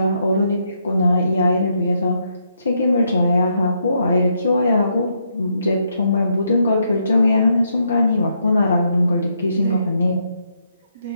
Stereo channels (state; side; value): inverted; both; correlation -0.77